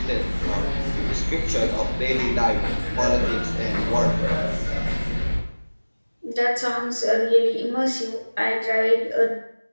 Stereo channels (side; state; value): both; inverted; correlation -1.00